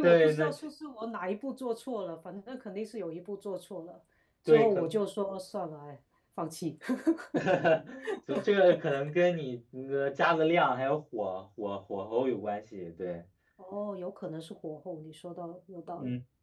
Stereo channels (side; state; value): both; identical; correlation 1.00